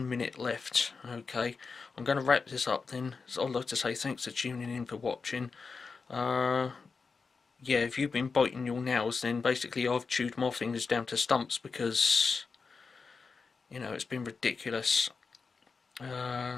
minute left. Okay, I'm going to wrap this up then. So I'd like to say thanks for tuning in, for watching. Yeah, if you've been biting your nails, then basically I've chewed my fingers down to stumps, because, you know, it's been ridiculous.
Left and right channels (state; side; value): quieter; right; 4.8 dB